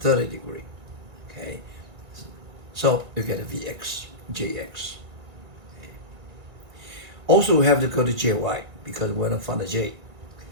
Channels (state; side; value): late; left; 2.1 ms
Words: degree. Okay, so you get a vx, jx. Okay. Also, we have to go to jy because we're not find the j.